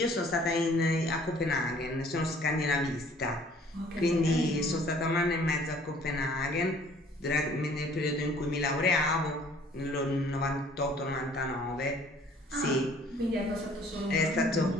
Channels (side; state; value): both; normal; correlation 0.55